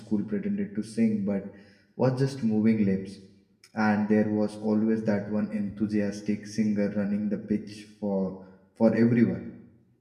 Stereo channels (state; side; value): identical; both; correlation 1.00